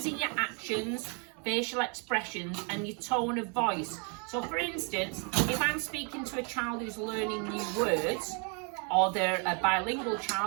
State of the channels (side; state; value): left; quieter; 36.3 dB